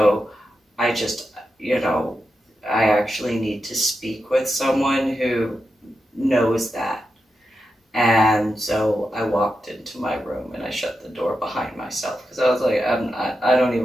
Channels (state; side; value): normal; both; correlation 0.88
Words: I just, you know, I actually need to speak with someone who knows that. And so I walked into my room and I shut the door behind myself, because I was like, I don't